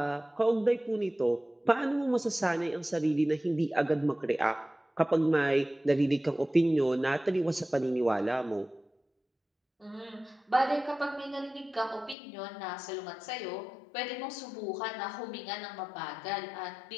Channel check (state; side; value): drops out; right; at 12.2 s